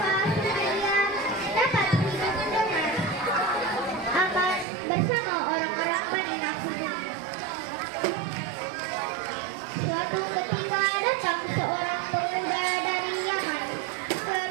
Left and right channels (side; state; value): left; drops out; at 4.7 s